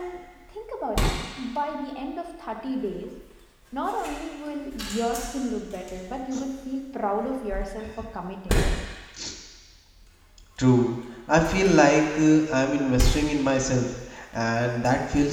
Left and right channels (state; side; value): identical; both; correlation 1.00